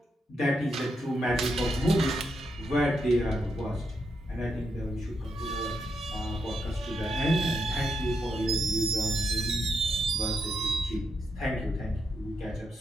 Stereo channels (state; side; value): normal; both; correlation 0.82